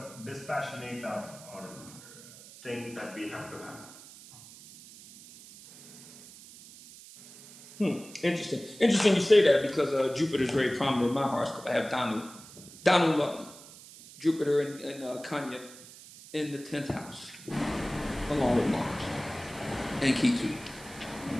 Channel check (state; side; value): noise; right; hiss, 18 dB below the sound